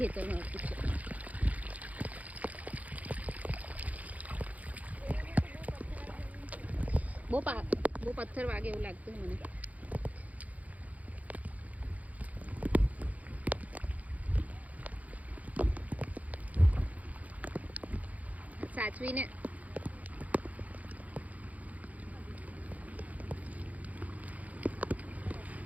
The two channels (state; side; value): late; left; 0.073 ms